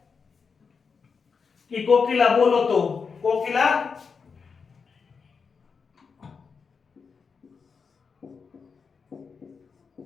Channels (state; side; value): quieter; right; 5.5 dB